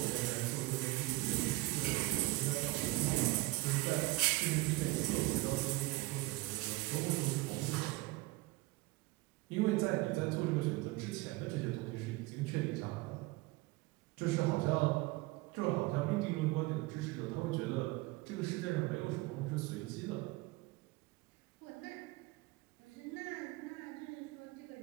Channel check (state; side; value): quieter; left; 20.4 dB